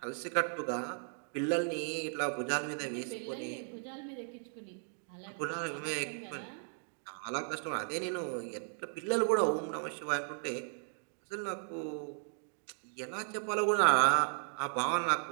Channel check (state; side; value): silent; left; 54 dB below the other